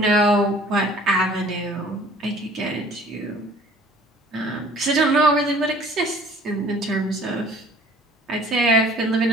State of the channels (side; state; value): both; normal; correlation 0.51